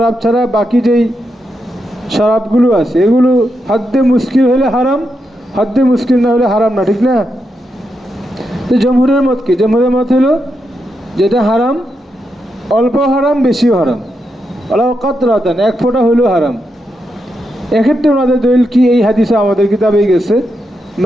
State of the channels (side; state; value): both; normal; correlation 0.84